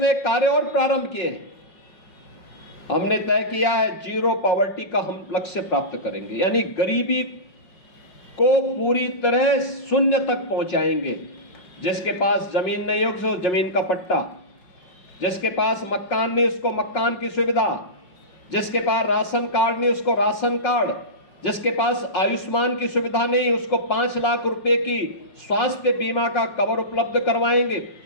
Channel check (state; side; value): late; right; 5.5 ms